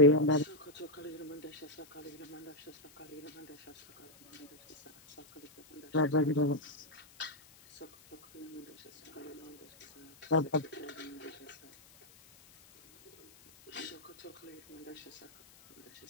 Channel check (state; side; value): noise; left; hiss, 24 dB below the sound